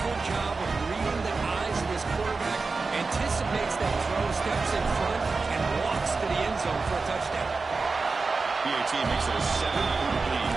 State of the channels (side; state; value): left; quieter; 4.1 dB